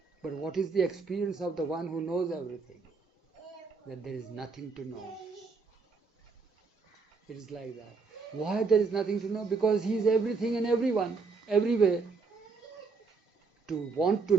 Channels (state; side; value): quieter; left; 4.6 dB